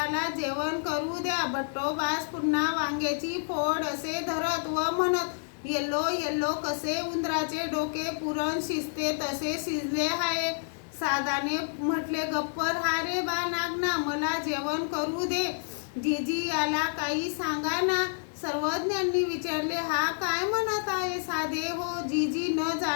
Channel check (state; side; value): silent; right; digital silence